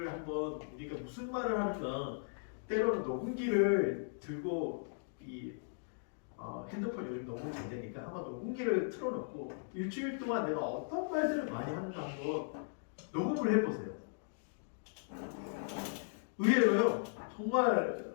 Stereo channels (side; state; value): right; silent; digital silence